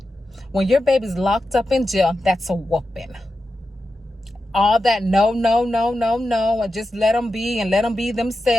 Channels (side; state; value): both; normal; correlation 0.90